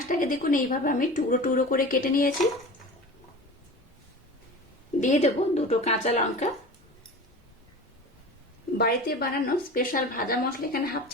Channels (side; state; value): both; normal; correlation 0.35